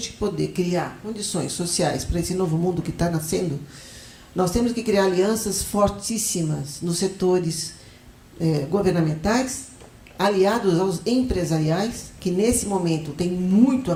poder criar condições sociais para esse novo mundo que está nascendo, nós temos que criar alianças fortíssimas nos setores governamentais, aliados aos empresariais, que nesse momento tem muito a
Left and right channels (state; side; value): identical; both; correlation 1.00